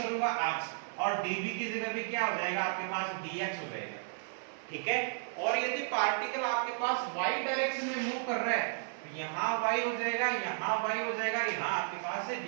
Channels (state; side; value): silent; left; 55 dB below the other